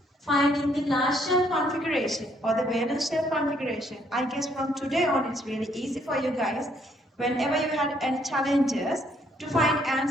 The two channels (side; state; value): both; normal; correlation 0.68